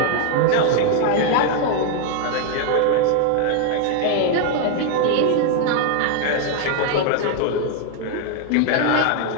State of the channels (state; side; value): different; both; correlation 0.00